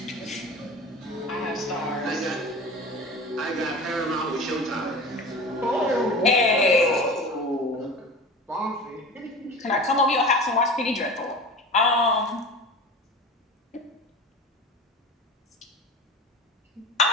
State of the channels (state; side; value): normal; both; correlation 0.34